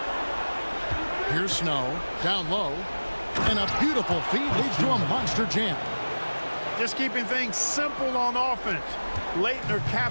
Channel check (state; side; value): inverted; both; correlation -1.00